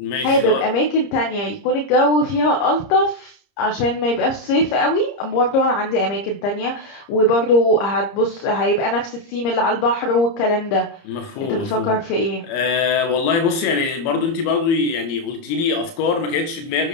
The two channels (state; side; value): late; right; 30 ms